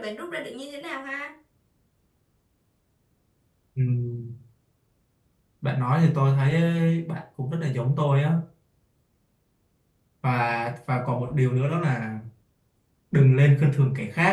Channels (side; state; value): both; identical; correlation 1.00